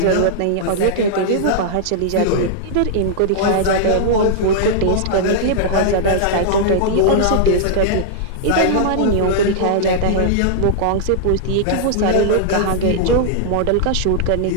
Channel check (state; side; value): different; both; correlation -0.02